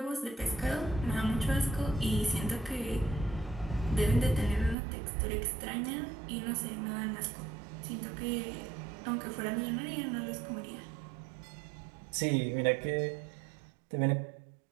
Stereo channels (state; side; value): drops out; left; at 4.8 s